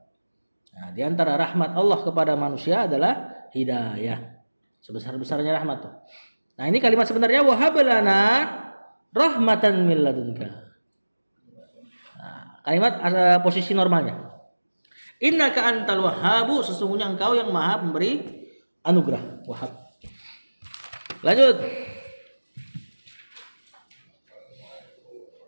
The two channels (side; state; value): both; inverted; correlation -1.00